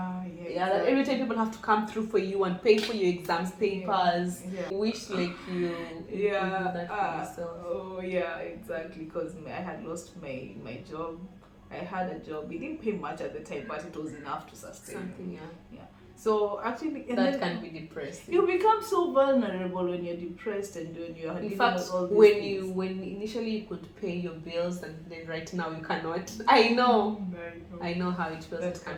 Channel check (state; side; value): identical; both; correlation 1.00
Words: That every time people have to come through for you and pay for your exams papers. Yeah. Wish like you do that for yourself. Oh yeah, exactly. Because I had lost my job. I had a job. It didn't pay much at the time, but it was enough to sustain me. Something, So actually, and that then can be depressing. you become so vulnerable when you're depressed and when you're In dealing fact, with all these when things. when initially you could pay your bills and then right now you cannot. I know how it feels. That It can